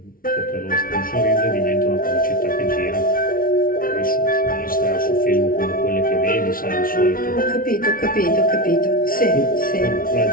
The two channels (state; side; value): late; right; 0.42 ms